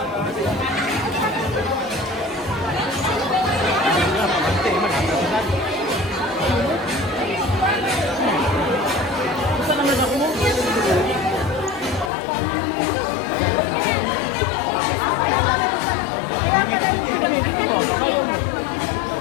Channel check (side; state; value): right; drops out; at 12.1 s